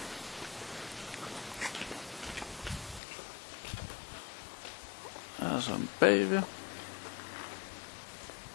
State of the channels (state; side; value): drops out; right; at 3.0 s